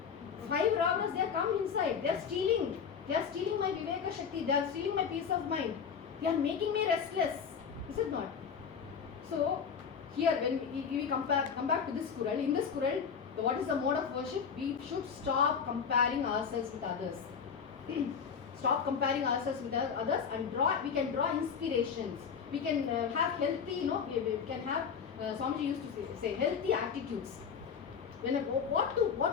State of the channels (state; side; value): quieter; right; 6.7 dB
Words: 5 robbers, they have come inside. They are stealing. They are stealing my Viveka Shakti. They are stealing my peace of mind. They are making me restless. Is it not? So, here when we come back to this Kural, in this Kural, what is the mode of worship? We should stop comparing ourselves with others. Stop comparing ourselves with others and we can draw inspirations. We can have healthy, we can have, Swamiji used to say healthy attitudes.